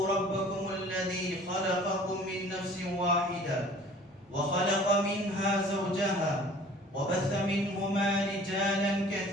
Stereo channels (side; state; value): both; normal; correlation 0.49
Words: ربكم الذي خلقكم من نفس واحدة وخلق منها زوجها وبث منهما رجالا